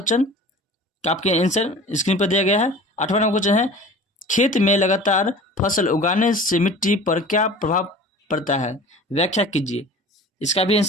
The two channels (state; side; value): normal; both; correlation 0.41